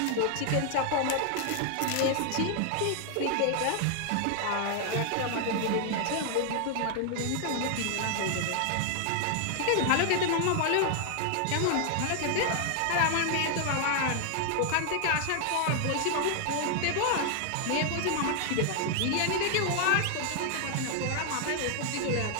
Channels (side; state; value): both; different; correlation 0.00